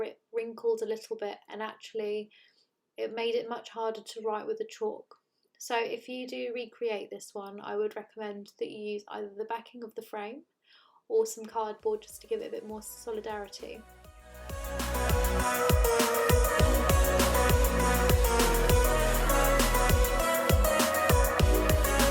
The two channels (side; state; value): both; identical; correlation 1.00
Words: it wrinkled a little bit and actually it made it much harder to write with the chalk. So if you do recreate this one, I would recommend that you use either the backing of the frame or some cardboard just to give it a bit more solidarity.